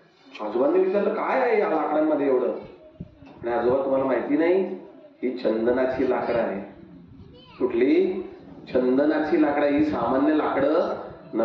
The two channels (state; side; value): identical; both; correlation 1.00